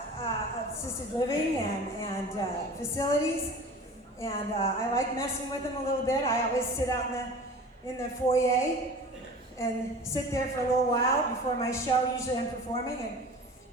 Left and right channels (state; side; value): normal; both; correlation 0.40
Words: assisted living and facilities, and I like messing with them a little bit. I always sit out in the foyer and sit there for a little while before my show. Usually I'm performing, and